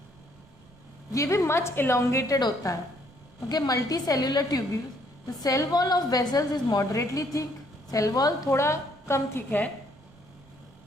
ये भी मच इलोंगेटेड होता है। Okay, multi cellular tubules. The cell wall of vessels is moderately thick. Cell wall थोड़ा कम thick है।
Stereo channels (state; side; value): noise; right; rumble, 26 dB below the sound